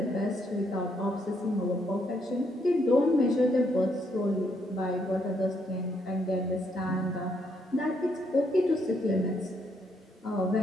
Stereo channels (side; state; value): both; normal; correlation 0.74